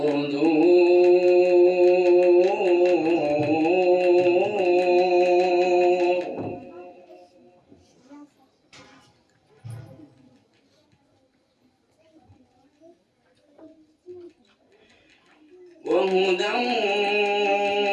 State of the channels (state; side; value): identical; both; correlation 1.00